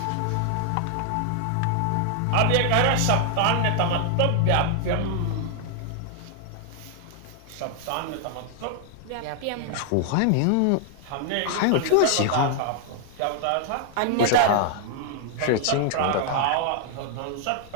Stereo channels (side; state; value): both; different; correlation 0.00